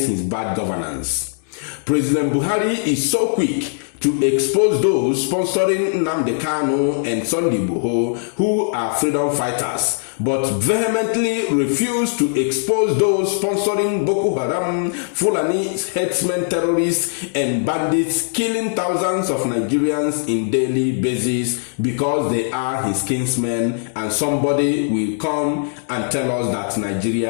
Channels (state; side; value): silent; right; digital silence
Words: his bad governance. President Buhari is so quick to expose those sponsoring Nnamdi Kanu and Igboho who are freedom fighters, but vehemently refuse to expose those sponsoring Boko Haram, Fulani headsmen, terrorists, and bandits killing thousands of Nigerians in daily basis because they are his kinsmen, and somebody will come and tell us that